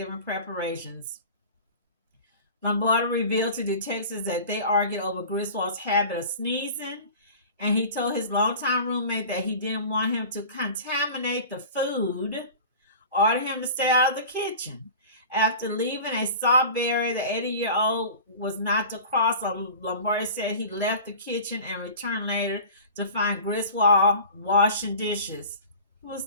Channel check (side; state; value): both; inverted; correlation -0.39